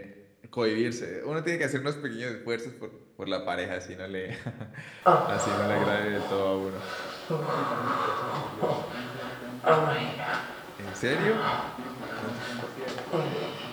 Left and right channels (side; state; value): both; identical; correlation 1.00